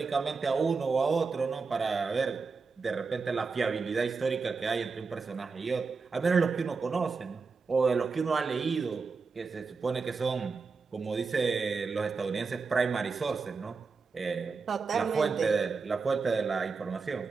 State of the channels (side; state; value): left; quieter; 4.7 dB